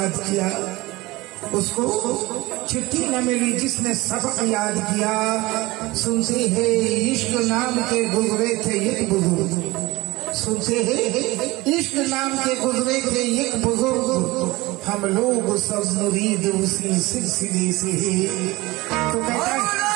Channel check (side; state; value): left; quieter; 21.0 dB